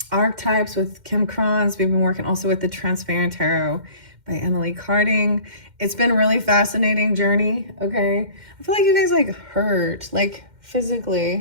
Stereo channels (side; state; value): left; late; 2.1 ms